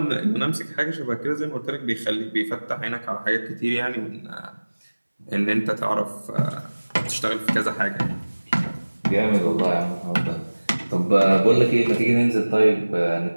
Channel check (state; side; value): inverted; both; correlation -1.00